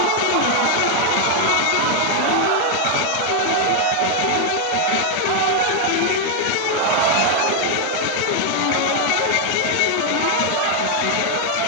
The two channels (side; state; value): both; different; correlation 0.00